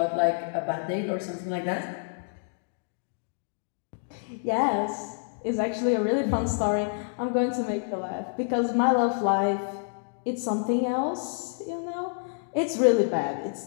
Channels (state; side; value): silent; right; digital silence